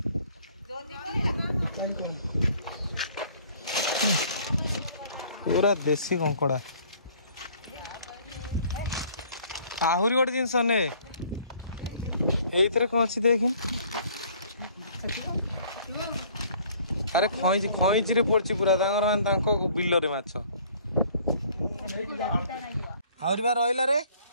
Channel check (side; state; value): both; inverted; correlation -0.56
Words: पूरा देसी कंकड़ा आहरी गोटे जिनस ने कौन अच्छी देख अरे खईची रे पड़ी पूरा बिल रे माछ आहरी बार रहा रे